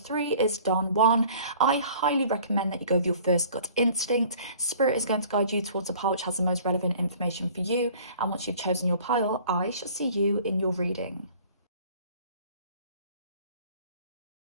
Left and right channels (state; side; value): inverted; both; correlation -0.50